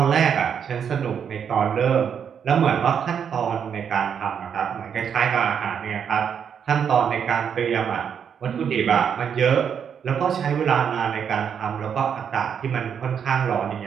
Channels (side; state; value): left; quieter; 7.7 dB